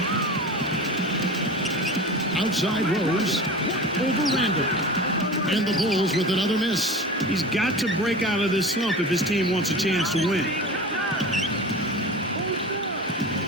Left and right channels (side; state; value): both; normal; correlation 0.33